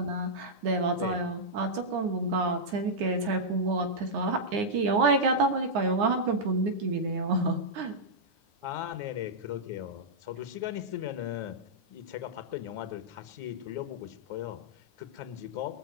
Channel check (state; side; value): late; left; 9.7 ms